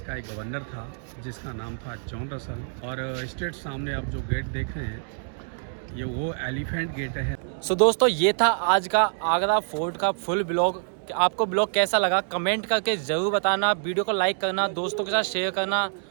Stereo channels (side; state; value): left; silent; digital silence